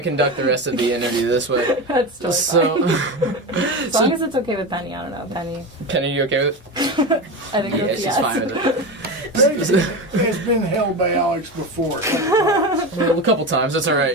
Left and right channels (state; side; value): normal; both; correlation 0.22